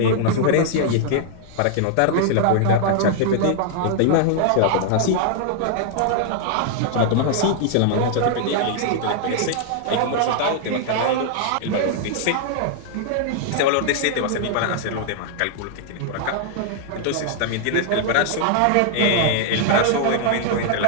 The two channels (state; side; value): different; both; correlation -0.01